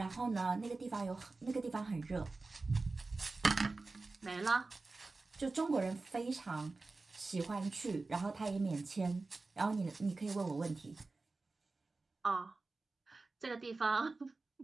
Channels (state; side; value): quieter; left; 3.6 dB